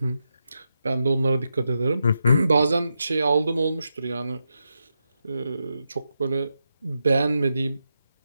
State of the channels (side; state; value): both; inverted; correlation -0.86